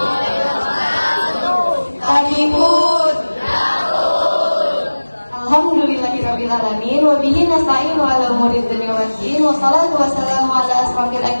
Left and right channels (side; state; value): both; inverted; correlation -1.00